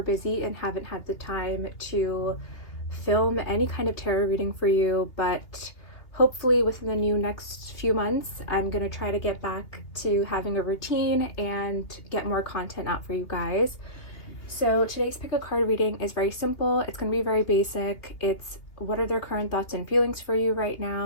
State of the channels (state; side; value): late; right; 2.8 ms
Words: busy and haven't had the time to film any kind of tarot reading for you, but hopefully within the next few months I'm going to try to get back to having a routine and get more content out for you guys. So today's pick a card reading is very simple. It's going to be very basic. It's what are their current thoughts and feelings for you right